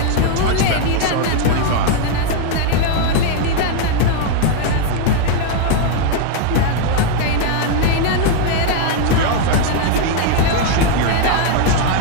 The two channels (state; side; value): different; both; correlation 0.00